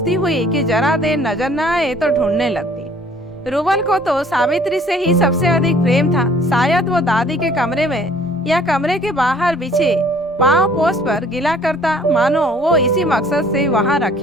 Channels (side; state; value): both; normal; correlation 0.56